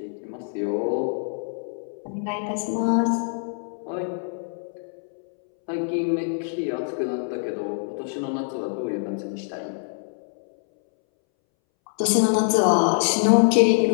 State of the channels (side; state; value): right; silent; 62 dB below the other